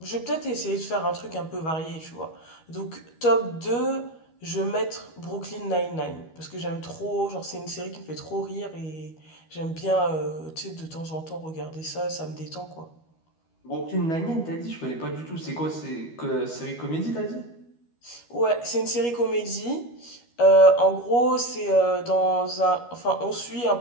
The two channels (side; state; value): right; late; 13 ms